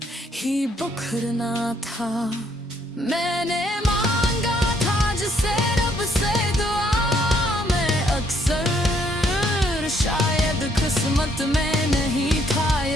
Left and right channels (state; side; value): normal; both; correlation 0.69